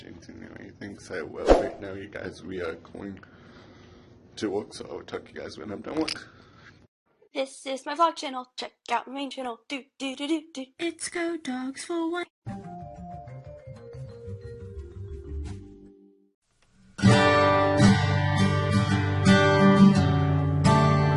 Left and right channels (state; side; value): identical; both; correlation 1.00